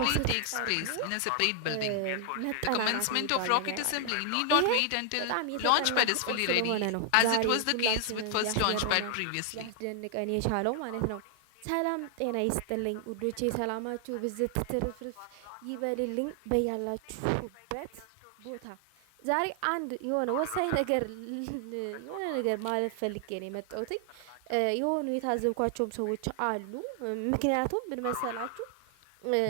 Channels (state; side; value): different; both; correlation 0.00